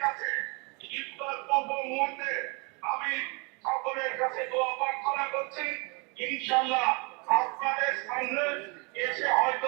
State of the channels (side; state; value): left; quieter; 31.5 dB